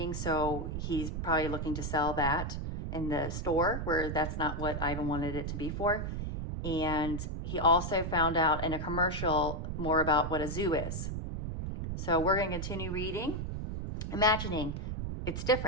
so he's probably looking to sell that in the store where that's not what Ivan wanted it to be for. And he also found out in a commercial more about what a zoo is. So we're going to continue reading, imagining it's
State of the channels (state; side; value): noise; right; rumble, 4 dB below the sound